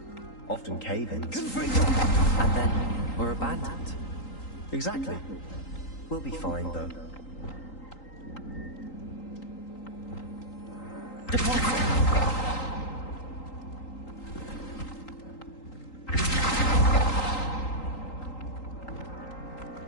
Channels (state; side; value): late; right; 3.8 ms